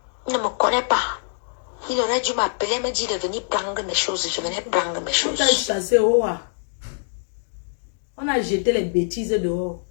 Il ne me connaît pas. Il aurait dû m'appeler, me dire de venir prendre mes choses. Je venais prendre mes choses. On t'a chassé au haut. On a jeté les bêtises dehors.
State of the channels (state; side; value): silent; right; digital silence